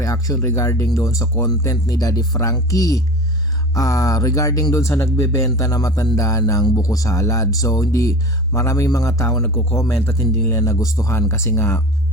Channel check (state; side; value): normal; both; correlation 0.35